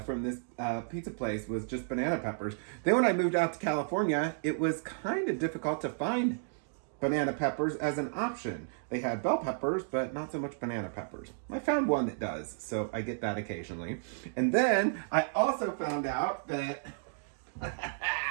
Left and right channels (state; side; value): silent; left; digital silence